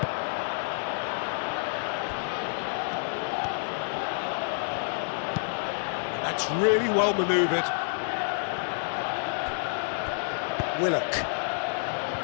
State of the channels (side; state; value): right; silent; 59 dB below the other